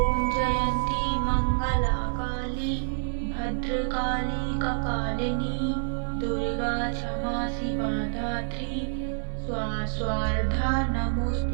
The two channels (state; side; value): silent; left; 60 dB below the other